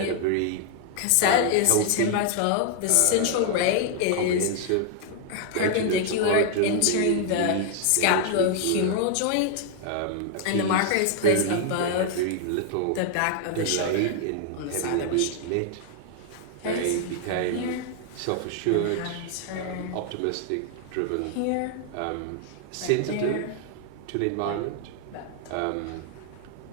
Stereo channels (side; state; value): both; different; correlation 0.00